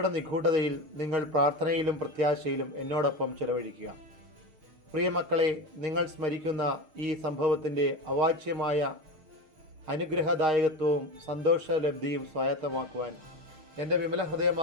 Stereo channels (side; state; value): left; late; 6.4 ms